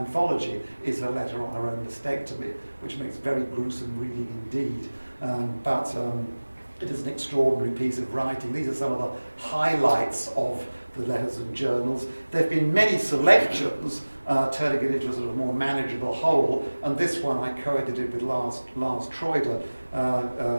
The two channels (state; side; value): inverted; both; correlation -1.00